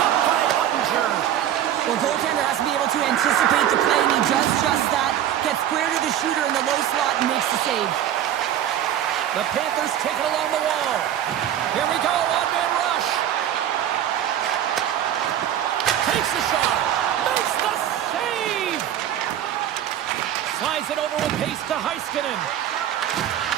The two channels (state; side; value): quieter; left; 10.9 dB